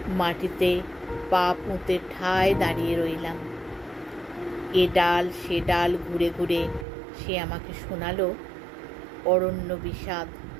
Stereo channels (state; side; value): drops out; left; at 6.9 s